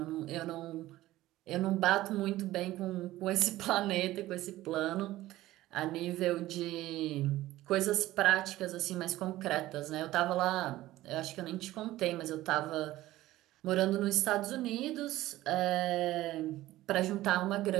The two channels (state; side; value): quieter; left; 16.1 dB